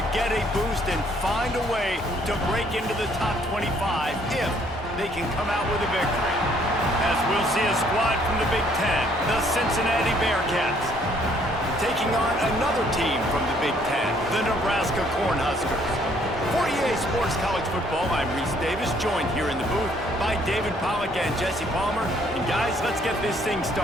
get a boost and find a way to break into the top 25 if they can come out with a victory. As we'll see a squad from the Big Ten, the Cincinnati Bearcats, taking on another team from the Big Ten, the Nebraska Cornhuskers. For EA Sports College Football, I'm Reese Davis, joined here in the booth by David Pollack and Jesse Palmer. And guys, let's get this thing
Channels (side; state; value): both; normal; correlation 0.64